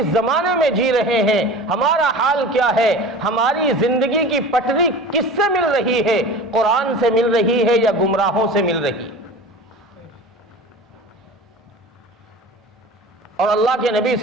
زمانے میں جی رہے ہیں، ہمارا حال کیا ہے؟ ہماری زندگی کی پٹری کس سے مل رہی ہے؟ قرآن سے مل رہی ہے یا گمراہوں سے مل رہی؟ اور اللہ کے نبی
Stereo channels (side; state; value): both; normal; correlation 0.36